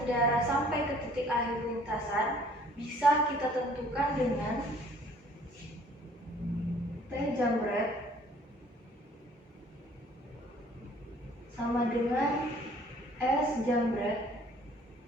sampai ke titik akhir lintasan bisa kita tentukan dengan T jambret sama dengan S jambret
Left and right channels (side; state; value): both; normal; correlation 0.56